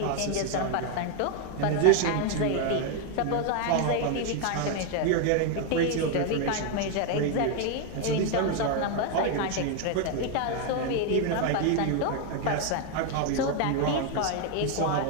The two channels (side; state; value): both; different; correlation 0.01